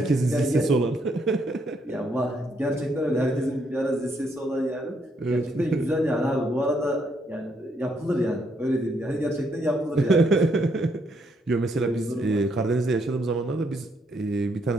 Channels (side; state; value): both; normal; correlation 0.73